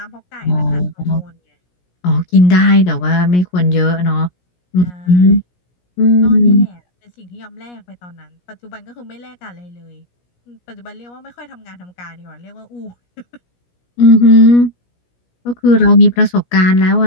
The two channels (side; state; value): right; late; 17 ms